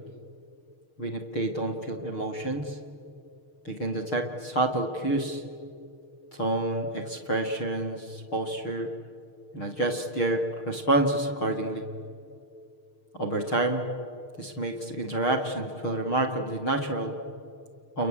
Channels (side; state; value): right; late; 6.5 ms